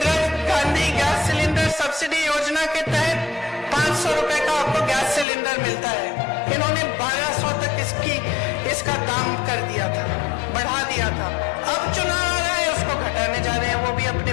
Gandhi gas cylinder subsidy योजना के तहत 500 रुपए का आपको गैस सिलेंडर मिलता है। इन्होंने 1200 तक इसका दाम कर दिया था, बढ़ा दिया था। अब चुनाव आ रहा है, उसको घटाने जा रहे हैं, वो भी अपने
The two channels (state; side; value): drops out; right; at 5.2 s